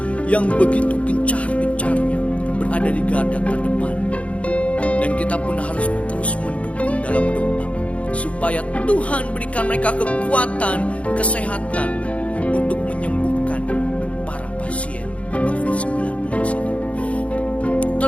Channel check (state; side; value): late; right; 0.064 ms